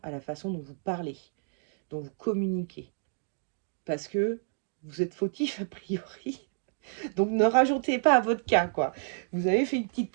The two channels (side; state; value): left; silent; digital silence